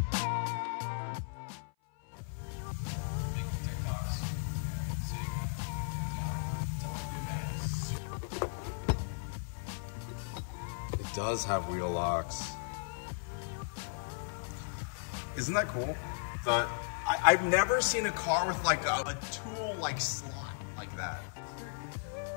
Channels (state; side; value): silent; right; 54 dB below the other